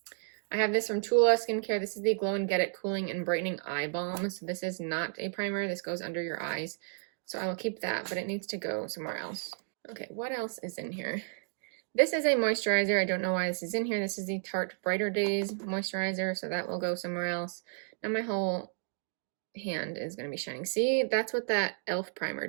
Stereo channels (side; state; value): left; silent; digital silence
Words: I have this from Tula Skincare. This is the Glow and Get It Cooling and Brightening Eye Balm. So this is not a primer. This goes under your eyes. So I will keep that, but it needs to go somewhere else. Okay, what else is in here? This is a moisturizer. I don't know why this is in here. This is the Tarte Brighter Days moisturizer, so that will go somewhere else. Now my whole hand is going to be shining. See, that's what that e.l.f. primer